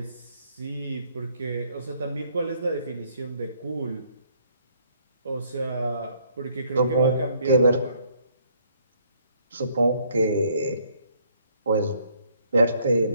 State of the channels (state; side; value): inverted; both; correlation -0.66